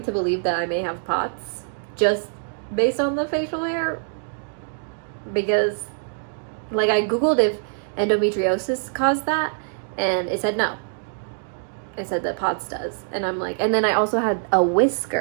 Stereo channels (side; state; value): left; silent; digital silence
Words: to believe that I may have POTS just based on the facial hair, because like I googled if endometriosis caused that and it said no. It said that POTS does. And I'm like, and then I also had a